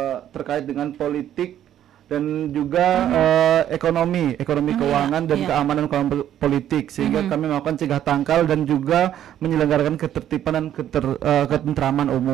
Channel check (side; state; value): left; quieter; 11.0 dB